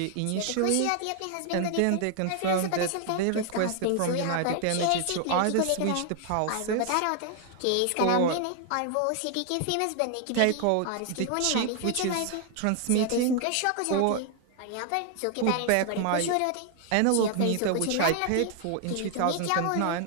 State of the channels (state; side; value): different; both; correlation 0.00